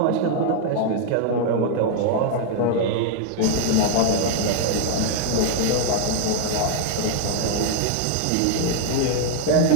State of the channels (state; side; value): different; both; correlation 0.00